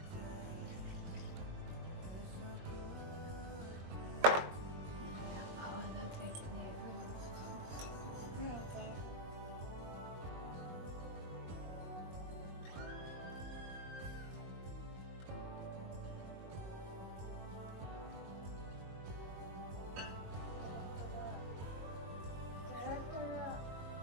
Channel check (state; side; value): late; left; 22 ms